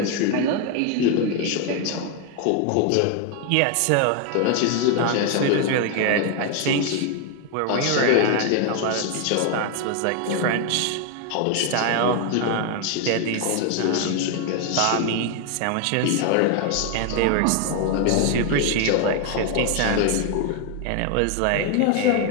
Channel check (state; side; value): different; both; correlation 0.01